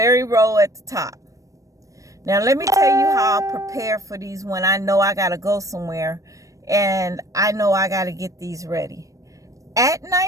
row at the top. Now let me tell you how I'll prepare for these when I know I gotta go somewhere and I know I gotta get these ready. At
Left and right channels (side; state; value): left; late; 0.16 ms